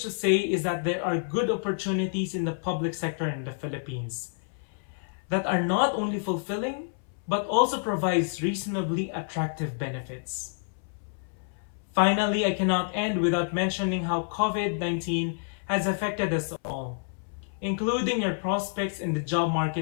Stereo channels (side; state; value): right; silent; 58 dB below the other